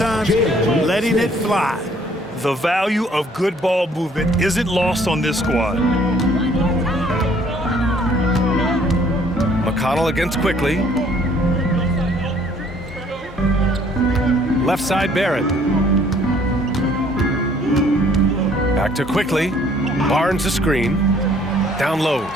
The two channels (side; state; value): both; normal; correlation 0.60